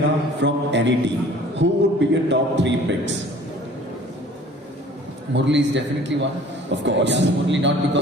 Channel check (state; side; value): normal; both; correlation 0.50